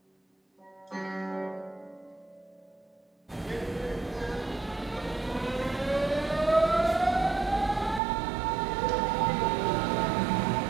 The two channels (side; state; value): left; drops out; at 8.0 s